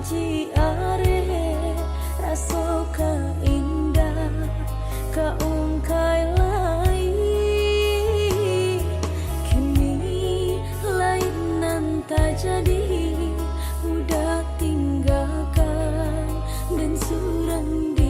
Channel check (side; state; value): both; identical; correlation 1.00